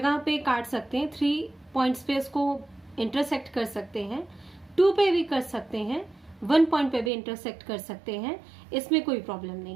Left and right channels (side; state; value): left; drops out; at 7.1 s